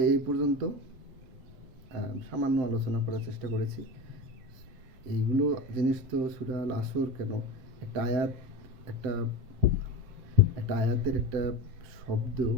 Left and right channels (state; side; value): late; left; 7.7 ms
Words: এই পর্যন্ত সামান্য আলোচনা করার চেষ্টা করেছি। এইগুলো জিনিস তো সূরা আল আসর কেন, একটা আয়াতের একটা শব্দ,